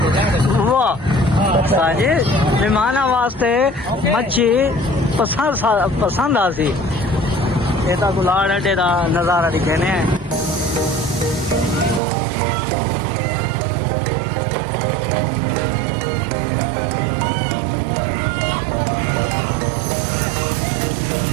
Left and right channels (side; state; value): left; drops out; at 12.0 s